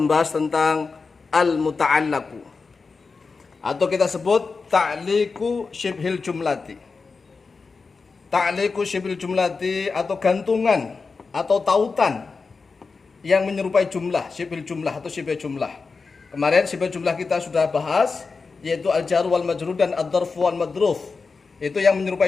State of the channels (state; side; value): quieter; right; 4.5 dB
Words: tentang al-muta'allaku, atau kita sebut ta'liqu syibhil jumlati. Ta'liqu syibhil jumlati atau gantungan atau tautan yang menyerupai jumlah, syibhil jumlah atau syibh jumlah. Kemarin syibh jumlah kita sudah bahas, yaitu al-jar wal majrur dan ad-dharf wal madruf. Itu yang